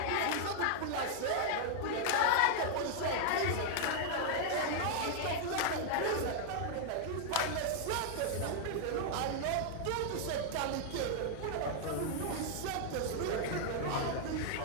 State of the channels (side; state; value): both; different; correlation 0.00